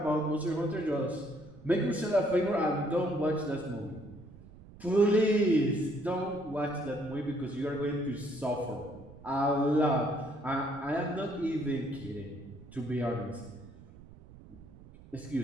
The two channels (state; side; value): noise; right; rumble, 20 dB below the sound